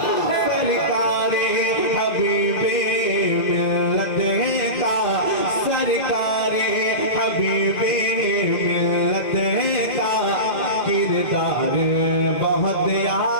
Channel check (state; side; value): late; right; 2.0 ms